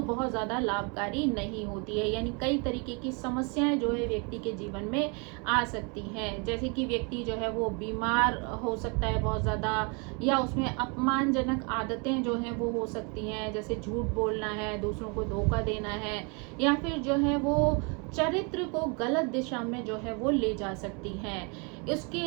बहुत ज़्यादा लाभकारी नहीं होती है, यानी कई तरीके की समस्याएं जो है व्यक्ति के जीवन में आ सकती हैं। जैसे कि व्यक्ति जो है वो बीमार हो सकता है बहुत ज़्यादा, या उसमें अपमानजनक आदतें जो हैं वो हो सकती हैं, जैसे झूठ बोलना है, दूसरों को धोखा देना है, या फिर जो है वो चरित्र को गलत दिशा में जो है वो ले जा सकती हैं।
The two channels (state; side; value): quieter; left; 33.6 dB